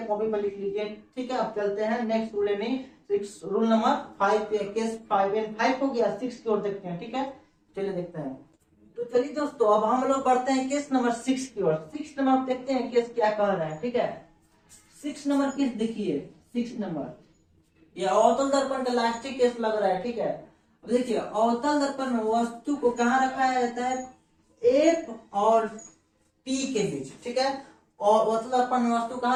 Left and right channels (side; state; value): both; identical; correlation 1.00